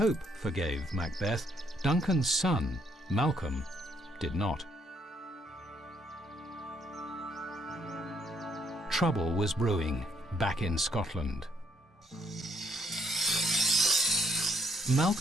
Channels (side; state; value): both; normal; correlation 0.70